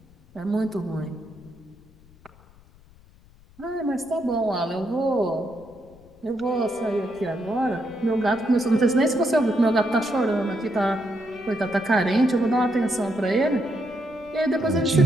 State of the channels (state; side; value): noise; left; rumble, 26 dB below the sound